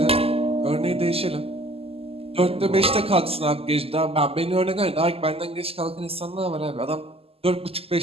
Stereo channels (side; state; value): left; late; 0.28 ms